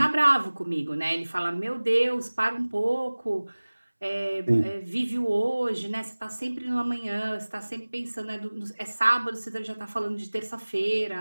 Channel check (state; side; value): inverted; both; correlation -1.00